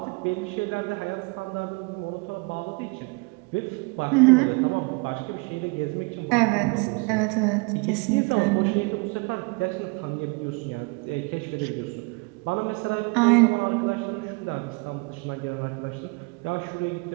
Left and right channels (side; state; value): left; quieter; 30.2 dB